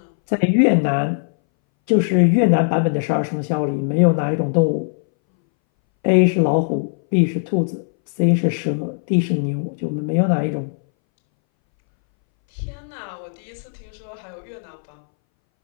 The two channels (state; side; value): silent; right; 63 dB below the other